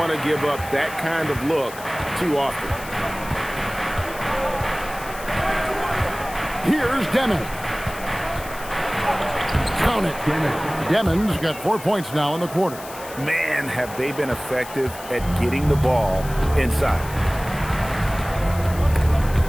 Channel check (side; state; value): left; noise; hiss, 15 dB below the sound